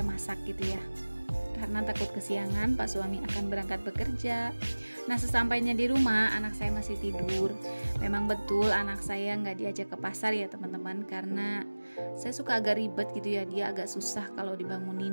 masak gitu ya, karena takut kesiangan Pak suami akan berangkat bekerja. Nah sesampainya di rumah anak saya masih tidur. Memang betul anak saya nggak diajak ke pasar ya teman-teman, karena saya suka agak ribet gitu ya, dia agak susah kalau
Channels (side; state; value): both; inverted; correlation -1.00